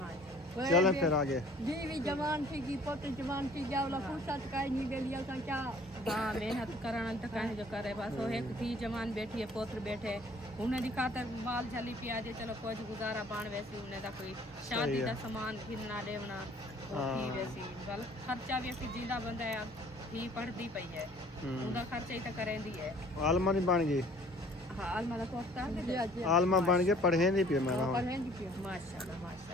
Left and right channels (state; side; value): normal; both; correlation 0.54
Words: जी चलो फिर आगे। बीवी जवान थी की पोते जवान थी जावला फुर्सत काई नहीं ले लिया था क्या। हाँ मेहनत करना तो कहीं जो करे बस। वो एक थी जवान बैठी है, पोत्र बैठे, उन्हें दिखाता माल झली पियाजे चलो कोई गुजारा पान वैसी उन्हें दा कोई शादी का सामान घिरना देवना थी वैसी गल खर्चा भी असी जिंदा बंदा है थी पढ़ती पई है, उनका खर्चा ही तो करेंदी है। आलमा नहीं बन गई। हाँ आलमा दा कोर्स कर आलमा बन के पढ़े नहीं पे मेरा। माशाल्लाह